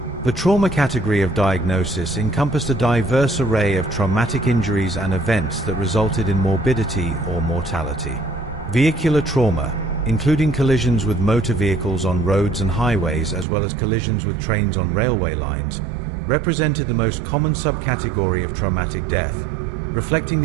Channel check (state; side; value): drops out; left; at 13.5 s